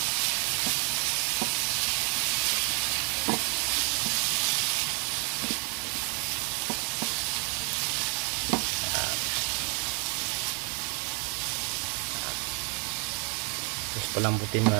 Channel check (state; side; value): quieter; left; 35.7 dB